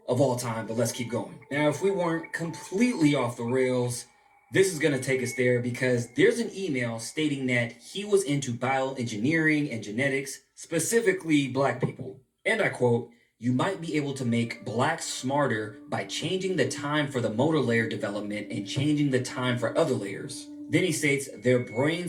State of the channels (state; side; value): identical; both; correlation 1.00